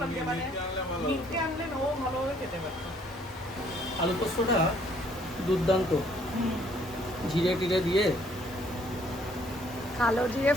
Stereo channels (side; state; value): both; normal; correlation 0.63